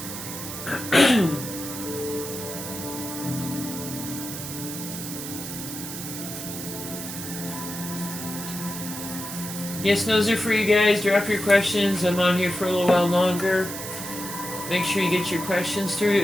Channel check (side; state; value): right; noise; hiss, 8 dB below the sound